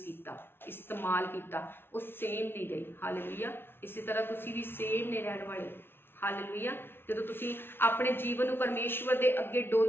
ਕੀਤਾ, ਇਸਤੇਮਾਲ ਕੀਤਾ, ਉਹ ਸੇਮ ਨਹੀਂ ਗਈ। ਹਾਲੇਲੂਇਆ। ਇਸੇ ਤਰ੍ਹਾਂ ਤੁਸੀਂ ਵੀ ਸੇਮ ਨਹੀਂ ਰਹਿਣ ਵਾਲੇ। ਹਾਲੇਲੂਇਆ। ਜਦੋਂ ਤੁਸੀਂ ਆਪਣੇ ਜੀਵਨ ਨੂੰ ਪਰਮੇਸ਼ਵਰ ਦੇ ਅੱਗੇ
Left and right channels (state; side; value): late; right; 0.11 ms